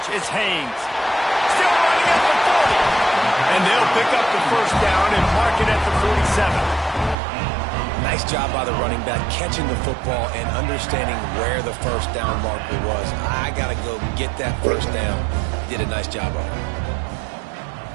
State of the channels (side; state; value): left; drops out; at 7.2 s